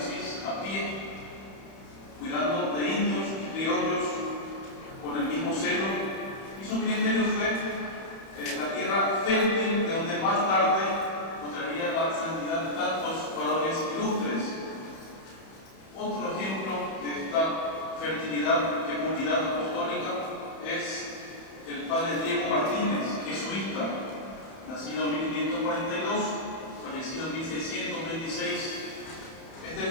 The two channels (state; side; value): late; right; 31 ms